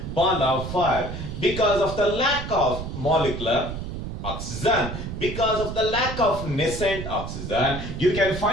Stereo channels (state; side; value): noise; right; rumble, 7 dB below the sound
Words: because of the lack of molecular oxygen, because of the lack of nascent oxygen. You can